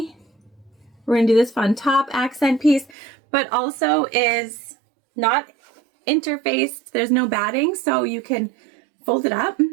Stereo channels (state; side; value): drops out; left; at 3.0 s